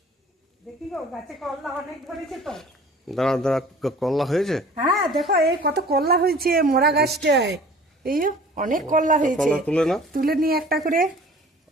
দেখি গো গাছে কলা অনেক ধরেছে তো। দাঁড়া দাঁড়া, কলা হয়েছে? হ্যাঁ দেখো এই কত কলা হয়েছে মোরা গাছটায়। এই অনেক কলা হয়েছে। কলা তুলে না, তুলে নিয়ে একটা করে।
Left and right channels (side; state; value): both; normal; correlation 0.47